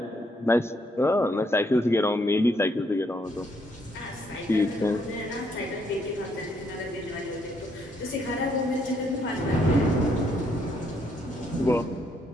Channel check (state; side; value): normal; both; correlation 0.72